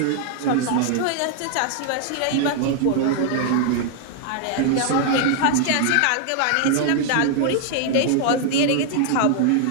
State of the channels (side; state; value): both; different; correlation 0.00